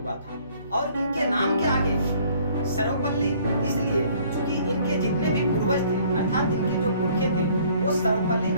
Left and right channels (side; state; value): both; inverted; correlation -0.58